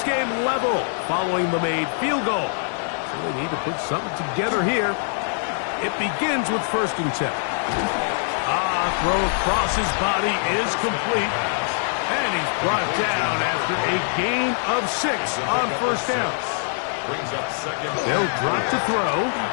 game level following the made field goal. So they need to put something together here. It begins with 1st and 10. Throw across his body is complete. And he's brought down after a gain of 6 on 1st down. Brings up 2nd. They'll drop to throw.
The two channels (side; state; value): right; silent; digital silence